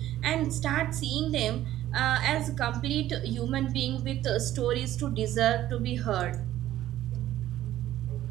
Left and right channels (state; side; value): quieter; left; 13.4 dB